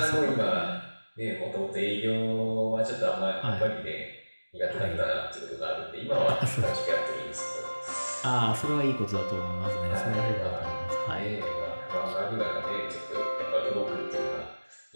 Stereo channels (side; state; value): both; inverted; correlation -1.00